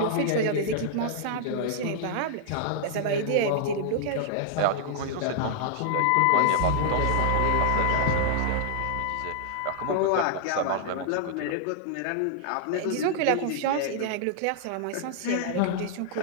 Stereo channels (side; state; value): both; different; correlation -0.01